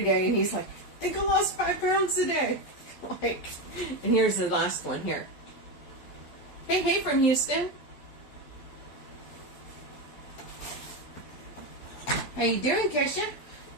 day, and he's like, I think I lost 5 pounds today. Like, and here's the last one here. Hey from Houston. How you doing, Kesha?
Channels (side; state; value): right; late; 11 ms